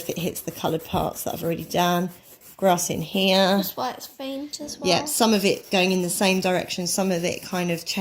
it hits the coloured parts that I've already done. Grass in here. That's why it's faint as well. Yeah, some of it going in the same direction, some of it kind of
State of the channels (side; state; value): both; identical; correlation 1.00